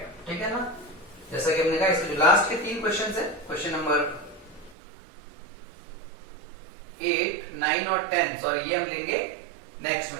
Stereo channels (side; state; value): left; drops out; at 4.8 s